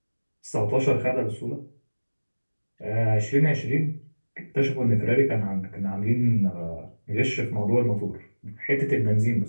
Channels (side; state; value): both; inverted; correlation -1.00